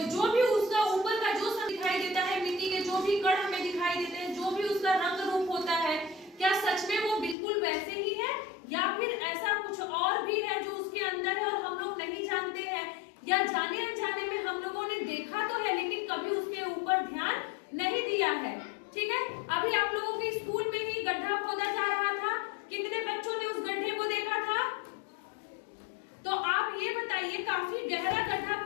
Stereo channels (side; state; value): right; drops out; at 7.4 s